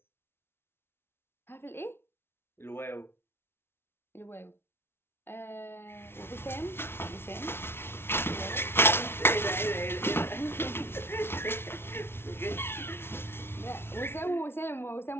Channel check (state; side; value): late; right; 0.12 ms